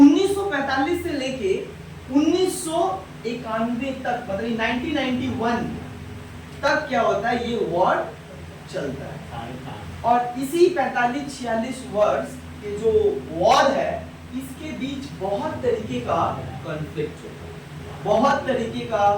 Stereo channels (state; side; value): identical; both; correlation 1.00